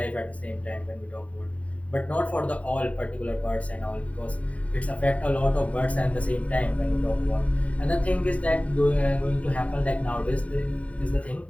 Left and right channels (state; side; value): late; right; 0.067 ms